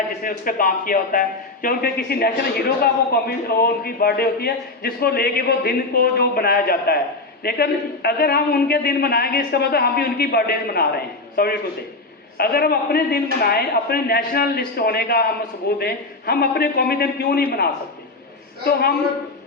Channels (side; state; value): right; quieter; 3.2 dB